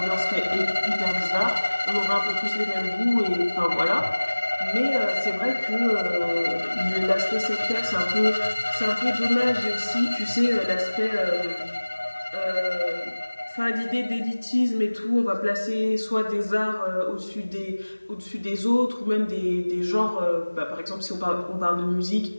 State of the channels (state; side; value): inverted; both; correlation -1.00